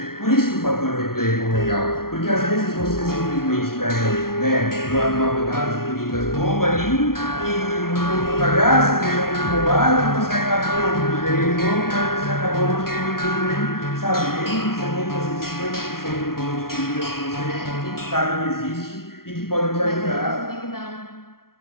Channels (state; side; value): late; right; 0.93 ms